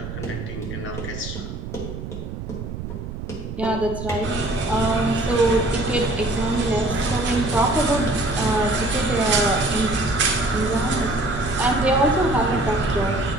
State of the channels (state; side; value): noise; right; rumble, 8 dB below the sound